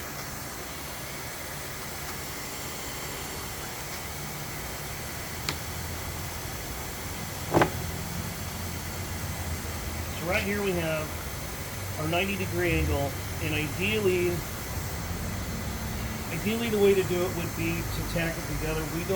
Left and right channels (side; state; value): both; identical; correlation 1.00